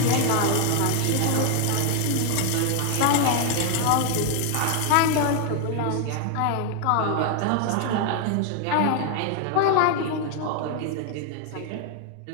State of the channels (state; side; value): different; both; correlation 0.00